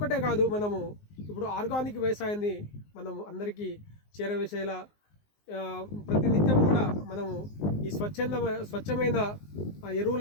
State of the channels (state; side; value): late; right; 19 ms